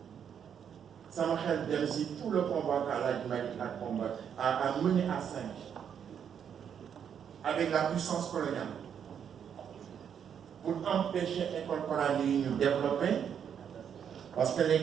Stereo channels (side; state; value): left; quieter; 8.1 dB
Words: sama xel dem si tout le combat qu'Al Hadji Malick a mené à Saint-Louis avec la puissance coloniale pour empêcher l'école coranique de nous développer, parce que